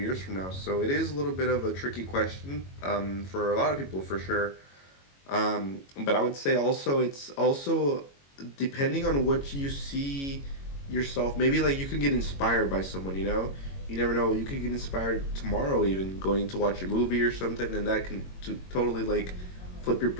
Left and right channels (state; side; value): late; right; 22 ms